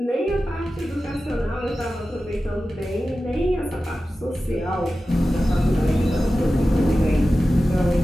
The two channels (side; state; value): both; normal; correlation 0.94